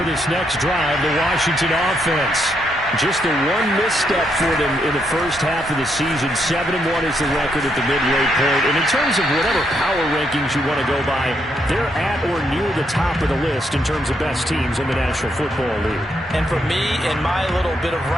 this next drive, the Washington offense. Just the one misstep for them in the first half of the season. 7-1 is the record at the midway point. And in terms of whatever power rankings you want to go by, they're at or near the top of the list in terms of best teams in the National Football League. And for me, in my little bit of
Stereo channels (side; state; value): both; normal; correlation 0.77